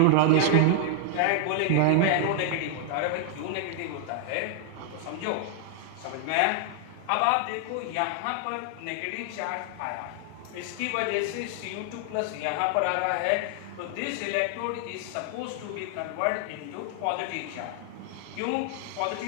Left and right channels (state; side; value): different; both; correlation 0.00